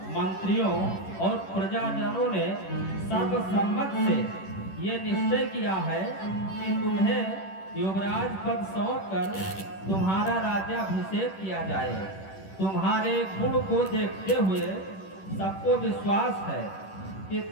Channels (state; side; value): late; right; 10 ms